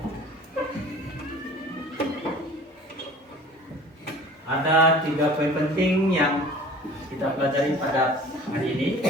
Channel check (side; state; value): both; normal; correlation 0.45